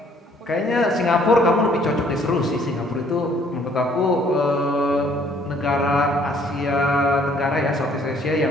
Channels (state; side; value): normal; both; correlation 0.61